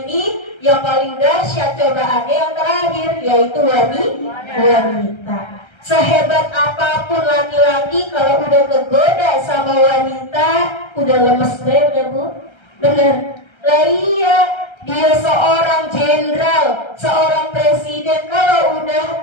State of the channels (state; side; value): late; right; 1.3 ms